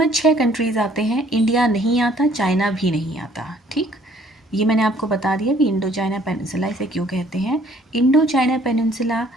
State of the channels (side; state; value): both; normal; correlation 0.60